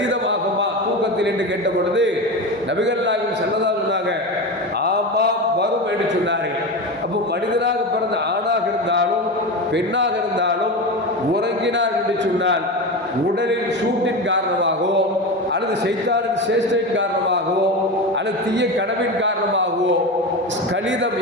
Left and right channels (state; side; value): normal; both; correlation 0.22